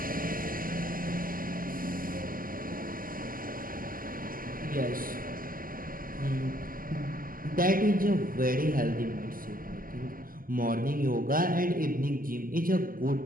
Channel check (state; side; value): late; left; 0.41 ms